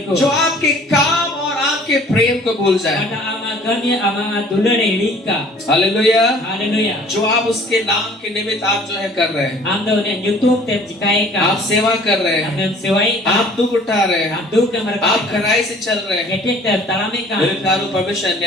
को जो आपके काम और आपके प्रेम को भूल जाए। pada ama gami ama दुलरे हिड़ी का हालेलुया। हालेलुया जो आप उसके नाम के निमित्त आप जो है कर रहे हैं, आम द ने यूट्यूब ते जिकाए का आप सेवा कर रहे हैं, हमने सेवाई आप दुख उठा रहे हैं, हम दुख के मर आप खराई से चल रहे हैं, गेटे तलामे का मेरे प्यारो परमेश्वर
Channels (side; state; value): both; normal; correlation 0.52